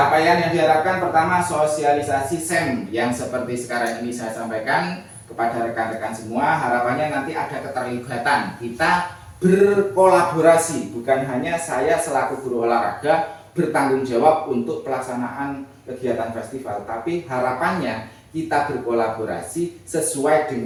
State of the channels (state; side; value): identical; both; correlation 1.00